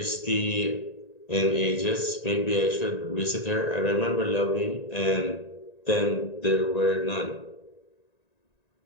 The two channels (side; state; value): right; late; 1.9 ms